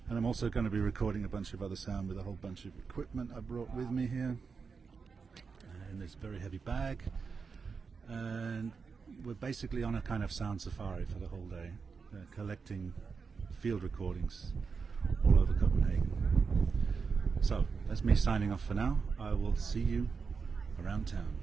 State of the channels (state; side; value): quieter; left; 5.2 dB